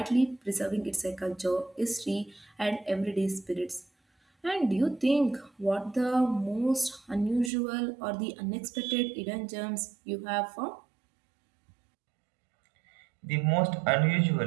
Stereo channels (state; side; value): drops out; left; at 7.5 s